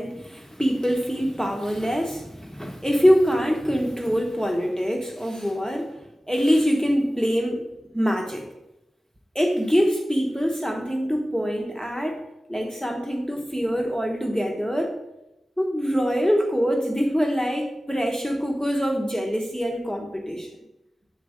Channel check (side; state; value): both; normal; correlation 0.96